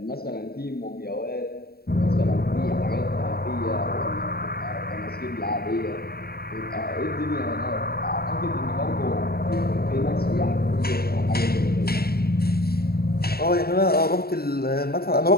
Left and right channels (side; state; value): right; late; 0.45 ms